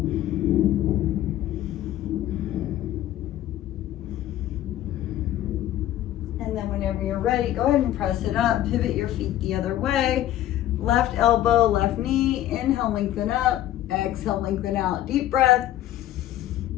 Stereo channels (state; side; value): quieter; right; 13.2 dB